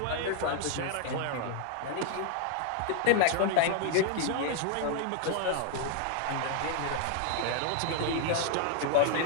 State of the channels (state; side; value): different; both; correlation 0.00